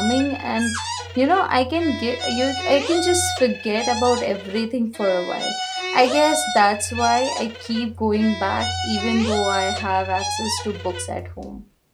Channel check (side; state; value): both; identical; correlation 1.00